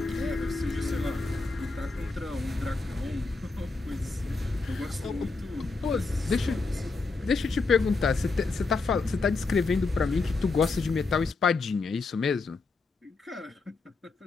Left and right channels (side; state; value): right; quieter; 3.9 dB